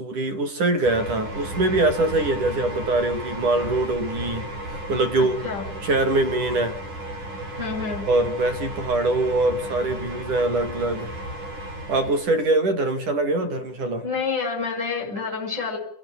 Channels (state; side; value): late; left; 10 ms